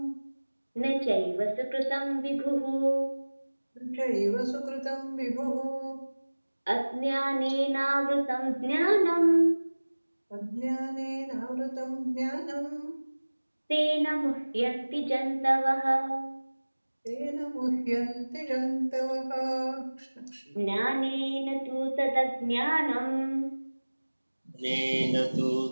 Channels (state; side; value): inverted; both; correlation -1.00